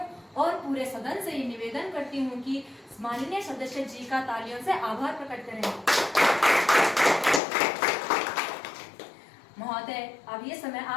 और पूरे सदन से ये निवेदन करती हूँ कि माननीय सदस्य जी का तालियों से आभार प्रकट करें। महोदय, अब ये समय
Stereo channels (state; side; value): drops out; right; at 7.4 s